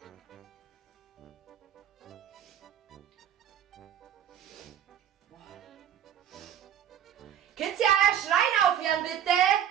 Könnt ihr euer Schreien aufhören, bitte?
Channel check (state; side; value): quieter; left; 10.1 dB